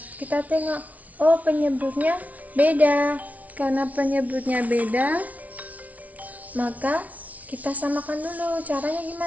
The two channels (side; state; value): left; late; 0.071 ms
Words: Kita tengok. Oh, penyebutnya beda. Karena penyebutnya beda, maka kita samakan dulu. Caranya